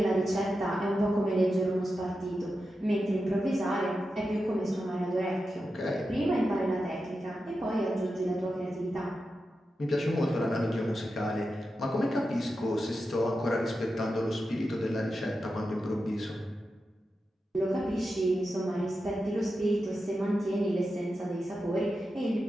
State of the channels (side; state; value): both; normal; correlation 0.90